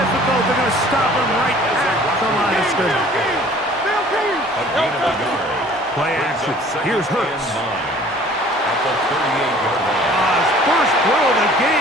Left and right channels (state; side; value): normal; both; correlation 0.51